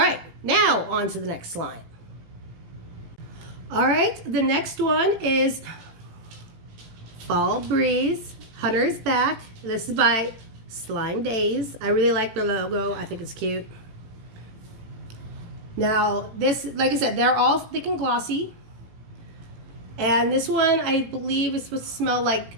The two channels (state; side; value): late; left; 18 ms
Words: now on to the next slime. All right, the next one is Fall Breeze. Hunter's Back. This is by Slime Daze. I really like the logo. I think it's cute. Now, this, like I said, they're all thick and glossy. And this one, I believe, is supposed to smell like